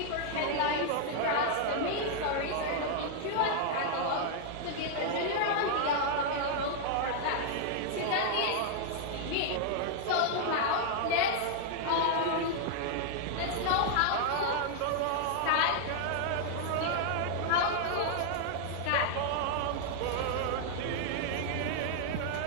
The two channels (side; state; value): both; different; correlation 0.00